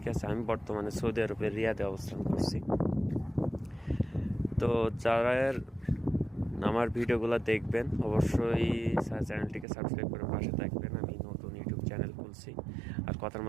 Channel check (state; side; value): drops out; left; at 9.7 s